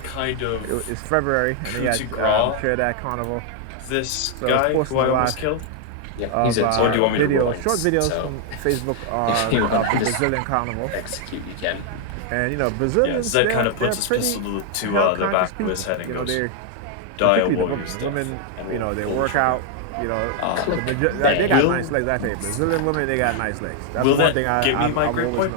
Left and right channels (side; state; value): both; different; correlation 0.00